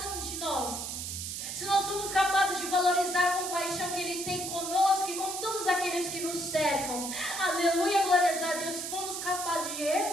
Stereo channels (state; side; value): noise; right; hiss, 5 dB below the sound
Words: valorizar a compaixão que Ele tem conosco e com todos aqueles que nos cercam. Aleluia, glórias a Deus. Se formos capazes de